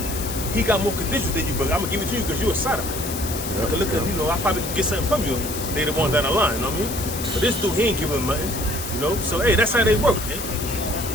he got more conditions than you, but I'm gonna give it to you because you're a sodomite. Look at, you know, I probably can get something from you later on down the line, you know what I mean? But this dude, he ain't giving him nothing, you know? So, hey, that's how they work, man.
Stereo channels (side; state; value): left; noise; hiss, 7 dB below the sound